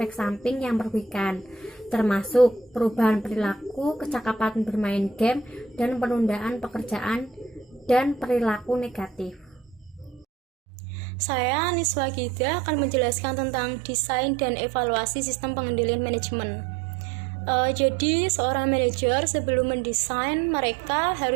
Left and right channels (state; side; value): drops out; left; at 10.2 s